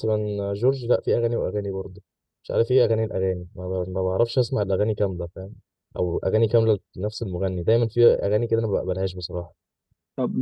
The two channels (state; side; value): identical; both; correlation 1.00